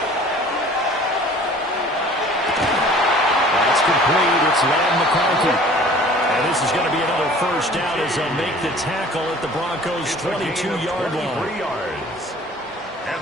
That's complete. It's Lamb McConkey. And this is going to be another first down as they'll make the tackle at the Broncos' 22-yard line. 23 yards. And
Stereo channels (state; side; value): normal; both; correlation 0.48